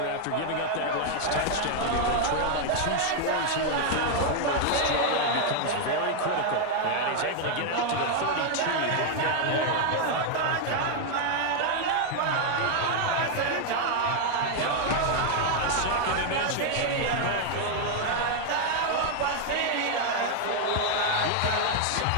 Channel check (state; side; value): different; both; correlation 0.00